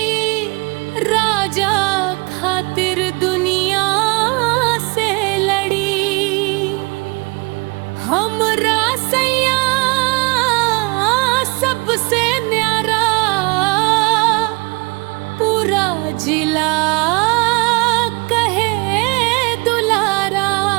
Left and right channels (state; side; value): quieter; left; 28.5 dB